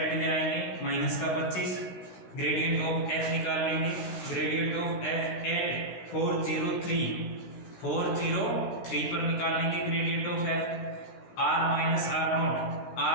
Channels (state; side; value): late; right; 16 ms